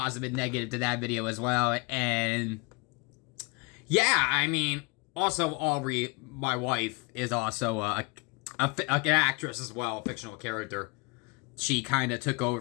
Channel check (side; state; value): right; quieter; 29.0 dB